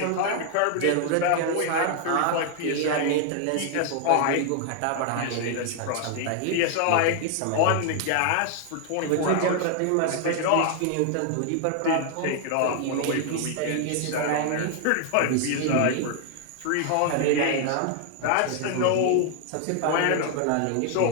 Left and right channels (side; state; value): both; different; correlation 0.00